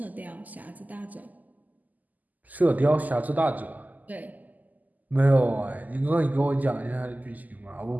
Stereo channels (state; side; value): late; left; 0.081 ms